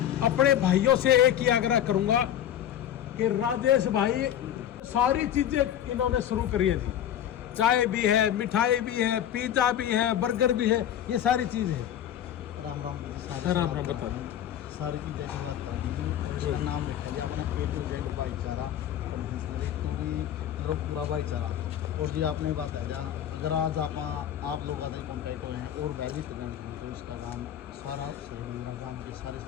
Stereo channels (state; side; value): quieter; right; 10.6 dB